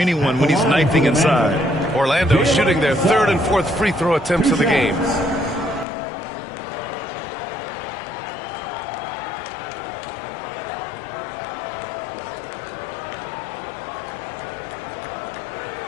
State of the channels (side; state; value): right; drops out; at 5.9 s